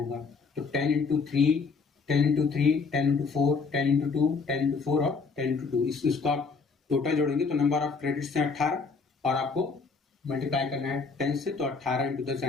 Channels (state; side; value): quieter; right; 4.8 dB